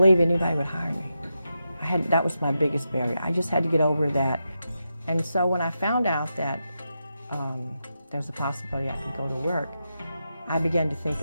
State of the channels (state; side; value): inverted; both; correlation -0.87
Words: anybody would hire me. That was my biggest barrier. I just had to get over that. And so when I found out that there was a possibility I could go to work, I began to think